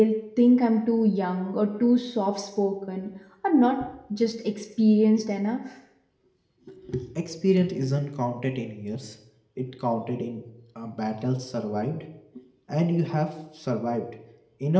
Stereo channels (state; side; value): identical; both; correlation 1.00